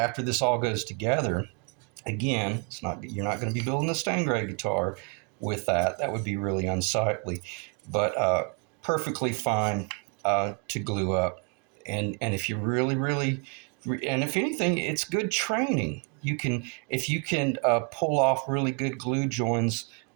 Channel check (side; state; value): left; quieter; 34.5 dB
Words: this all goes together. Again, you're not going to be building a stain grade guitar with that. That would be really unsightly, but perfectly fine to glue up. And if you really, and if anything, it's good training. If you can pull off really good glue joins